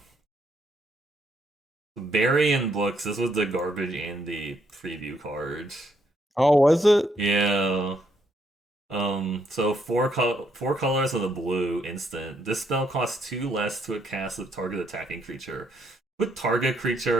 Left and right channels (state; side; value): normal; both; correlation 0.73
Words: Barry and books. This was the garbage Andy preview card. Oh, was it? Yeah. So four colors of the blue instant. This spell costs two less to cast a target attacking creature. Put target